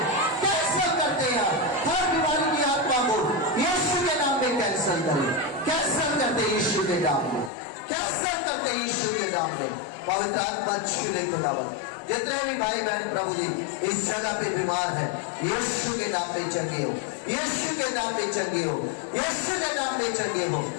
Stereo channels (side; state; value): right; drops out; at 7.5 s